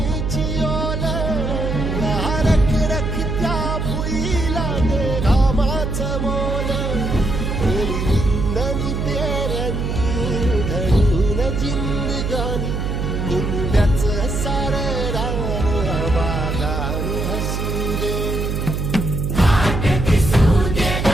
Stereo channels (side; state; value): right; noise; hum, 2 dB below the sound